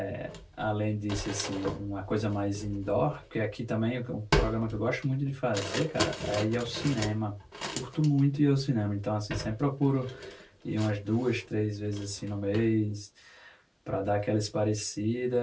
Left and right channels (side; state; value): both; identical; correlation 1.00